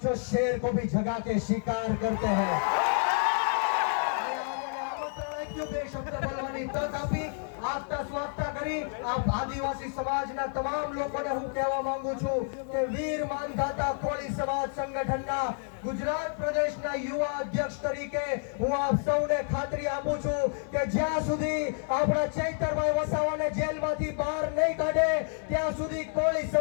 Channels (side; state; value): right; silent; 58 dB below the other